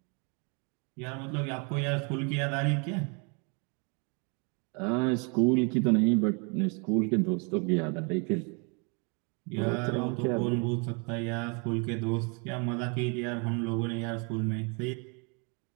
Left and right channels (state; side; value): quieter; left; 34.6 dB